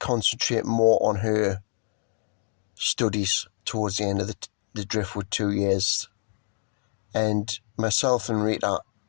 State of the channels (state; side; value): silent; right; 60 dB below the other